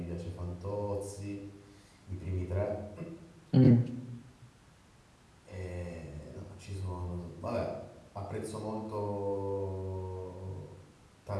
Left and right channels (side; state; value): both; identical; correlation 1.00